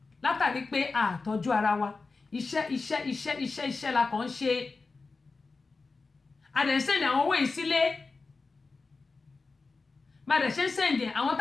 látàrí pé àtọ́jú ara wa iṣẹ́ la kàn ń ṣe àdẹ̀sẹ̀ndì àwọn owó yìí sílé bàdẹ̀ ṣe ń sẹ̀ndì àwọn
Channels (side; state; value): right; quieter; 4.0 dB